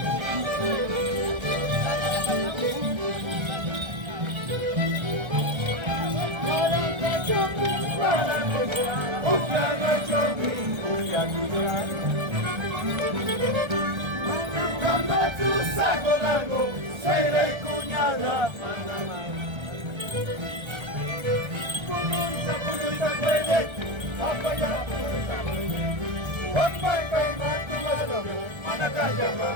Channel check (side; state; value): left; late; 1.3 ms